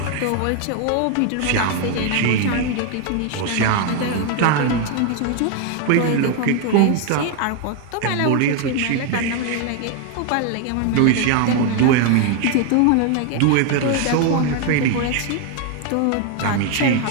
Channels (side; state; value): both; different; correlation 0.01